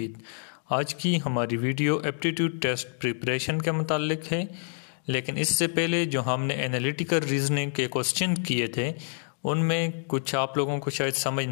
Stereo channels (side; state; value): right; silent; 60 dB below the other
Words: आज की हमारी वीडियो एप्टीट्यूड टेस्ट प्रिपरेशन के मुतालिक है, लेकिन इससे पहले जो हमने एनालिटिकल रीजनिंग के क्वेश्चन किए थे उनमें कुछ आप लोगों को शायद समझ